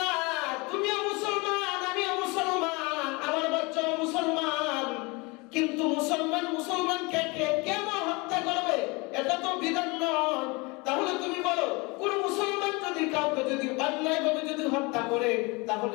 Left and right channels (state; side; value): quieter; right; 26.8 dB